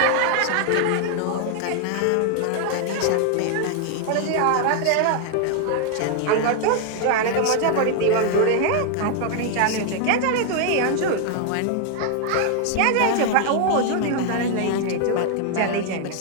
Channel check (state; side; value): different; both; correlation 0.00